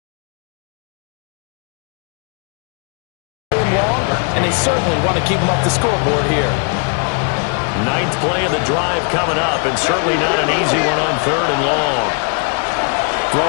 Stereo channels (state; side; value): quieter; right; 39.5 dB